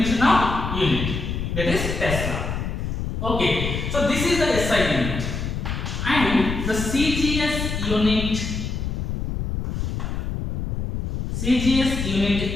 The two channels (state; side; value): noise; left; rumble, 3 dB below the sound